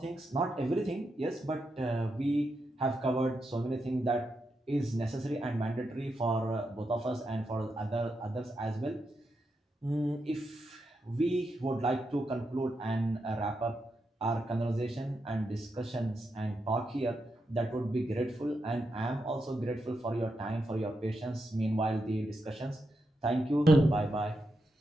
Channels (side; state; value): both; normal; correlation 0.85